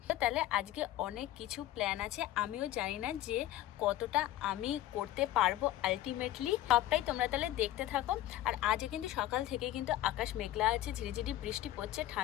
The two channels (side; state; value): right; quieter; 14.1 dB